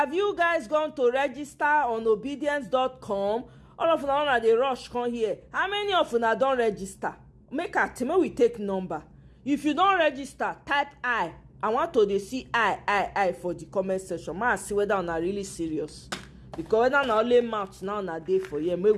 you guys gone to register on obedience.com? All of them they rush come here. How many of you don't register? Make a team, we take number. If you don't register, type I. I want to see I for the comment section. Man, see whether I'm really serious. Because whether not only mouth now na day for you, may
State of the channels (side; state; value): both; identical; correlation 1.00